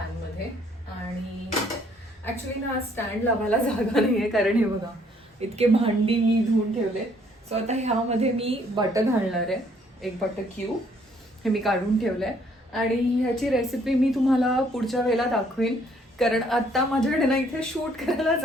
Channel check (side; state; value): both; normal; correlation 0.65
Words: आणि ॲक्च्युली ना स्टँड लावायला जागा नाही आहे कारण हे बघा इतके भांडी मी धुवून ठेवले. सो आता ह्यामध्ये मी बटर घालणार आहे, एक बटर क्यूब, हे मी काढून ठेवलं आहे. आणि ह्याची रेसिपी मी तुम्हाला पुढच्या वेळेला दाखवेन कारण आत्ता माझ्याकडे ना इथे शूट करायला